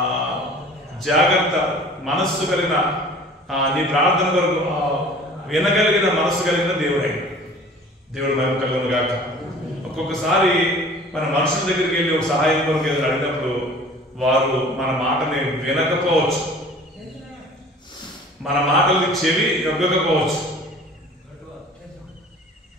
జాగ్రత్త మనస్సు కలిగిన, నీ ప్రార్థన కొరకు వినగలిగిన మనస్సు కలిగిన దేవుడై. దేవుడు మహిమ కలుగును గాక. ఒక్కొక్కసారి మన మనుషుల దగ్గరికి వెళ్ళి ఒక సహాయం కొరకు ఏదో అడిగినప్పుడు వారు మన మాటని వినకపోవచ్చు, మన మాటలకి చెవి యొగ్గకపోవచ్చు,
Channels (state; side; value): normal; both; correlation 0.46